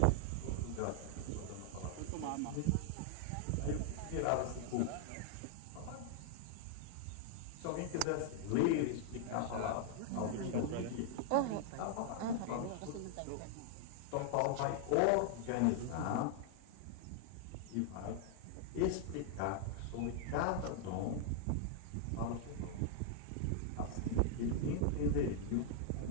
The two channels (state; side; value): different; both; correlation 0.00